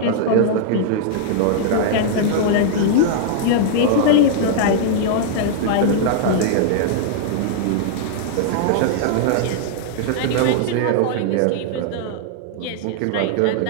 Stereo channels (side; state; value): both; different; correlation -0.01